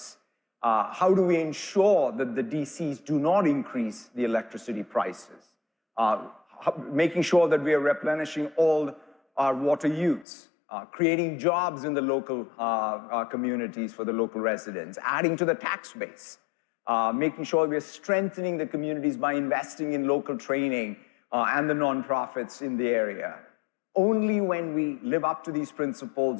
How do we ensure that the DCs do not increase the electricity prices? Making sure that we are replenishing all our water use, creating jobs in the local communities for the local residents, adding to the tax base, making sure we are strengthening the communities by investing in local training and the nonprofits in the area. Only when we live up to these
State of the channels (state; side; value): drops out; right; at 10.2 s